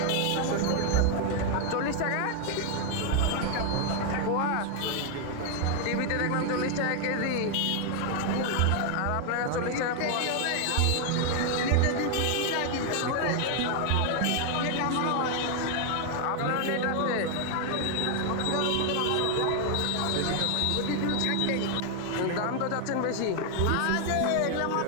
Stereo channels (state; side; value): different; both; correlation 0.00